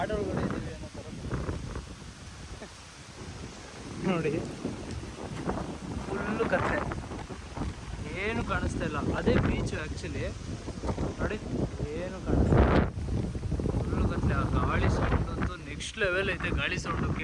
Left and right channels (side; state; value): both; identical; correlation 1.00